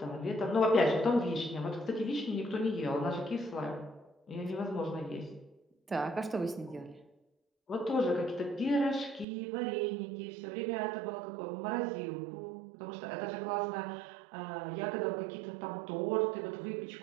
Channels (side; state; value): left; drops out; at 9.2 s